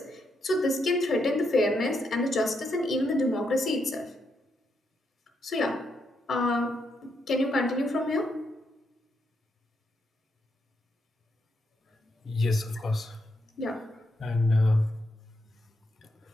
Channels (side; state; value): both; normal; correlation 0.80